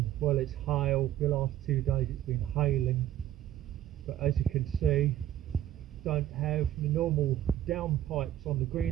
Well, it's hail. The last 2 days it's been hailing, but as you can see, don't have the normal downpipes on the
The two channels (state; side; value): quieter; left; 12.2 dB